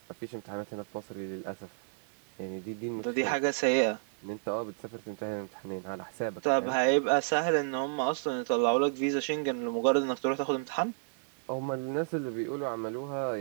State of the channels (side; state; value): left; silent; digital silence